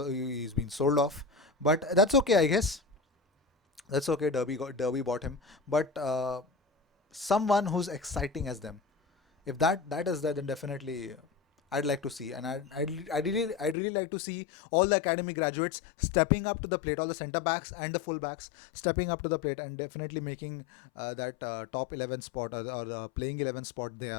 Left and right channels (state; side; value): drops out; right; at 13.8 s